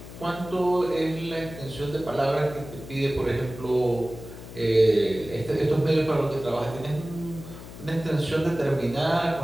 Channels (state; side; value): noise; left; hum, 14 dB below the sound